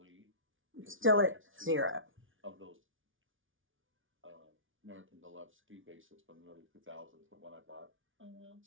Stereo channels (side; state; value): left; late; 0.57 ms